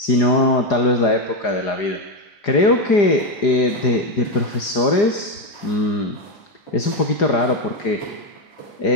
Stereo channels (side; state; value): right; late; 4.9 ms